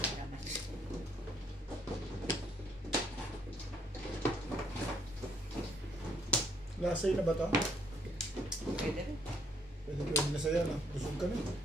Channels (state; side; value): normal; both; correlation 0.67